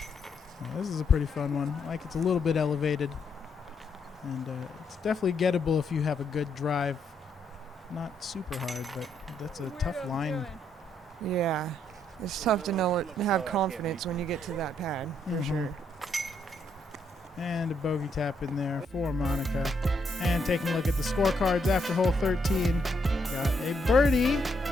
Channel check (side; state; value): both; normal; correlation 0.75